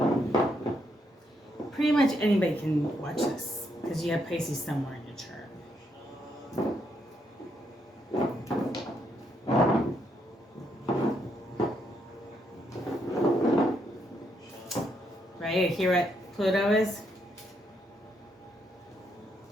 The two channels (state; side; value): normal; both; correlation 0.77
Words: pretty much anybody can watch this because you have Pisces somewhere in your chart. Right here what Pluto is.